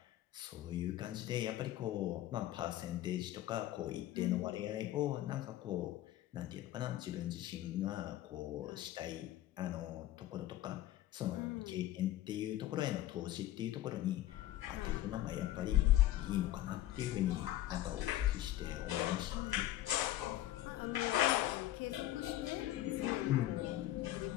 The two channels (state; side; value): quieter; right; 14.1 dB